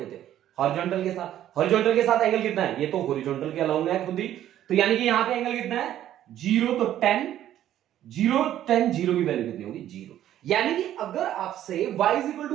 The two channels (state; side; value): quieter; left; 11.9 dB